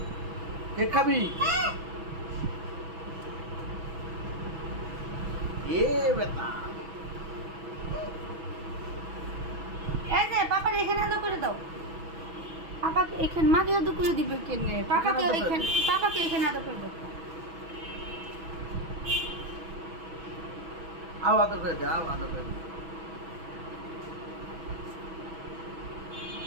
কেক খাবি? এ বেটা, এই যে পাপার এখানে আদর করে দাও। পাপাকে এখানে, মাকে আদর করে দিবে কেনে? পাপাকে এখানে আদর করে দাও। আও আদর করে দে, আও আদর করে দে।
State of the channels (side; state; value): left; late; 6.1 ms